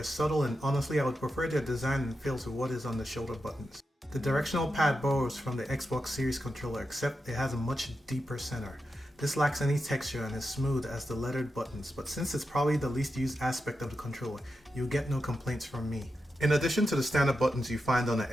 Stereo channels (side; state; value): both; normal; correlation 0.88